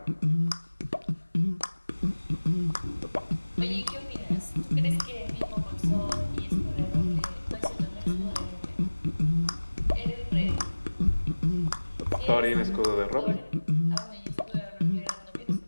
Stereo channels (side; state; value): both; inverted; correlation -1.00